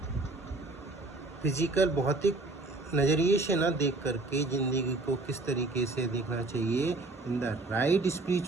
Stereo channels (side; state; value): left; quieter; 3.2 dB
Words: फिजिकल भौतिक नज़रिए से ना देख करके जिंदगी को किस तरीके से देखना चाहिए? इन द राइट